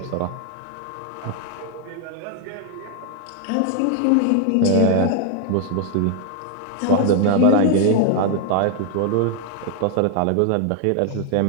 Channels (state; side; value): different; both; correlation 0.00